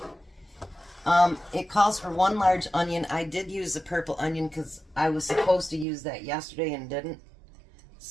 It calls for 1 large onion. I did use the purple onion because I was supposed to use that yesterday and didn't.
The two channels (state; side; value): drops out; left; at 5.9 s